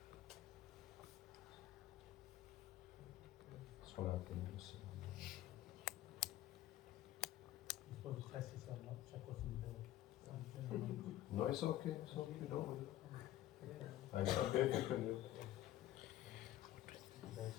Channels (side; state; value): right; quieter; 13.9 dB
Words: صلاة المسلمين. No, it's okay, don't worry. I said that you can do.